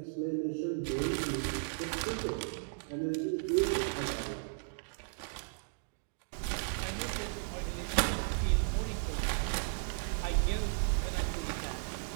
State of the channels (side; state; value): left; silent; digital silence